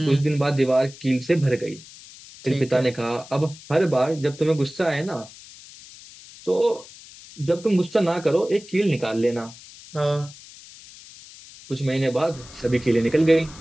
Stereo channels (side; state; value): left; noise; hiss, 19 dB below the sound